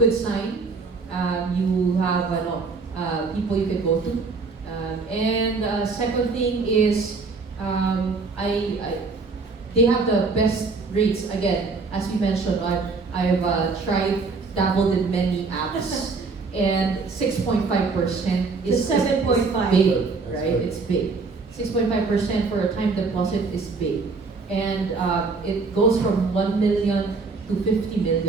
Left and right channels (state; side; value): quieter; left; 4.3 dB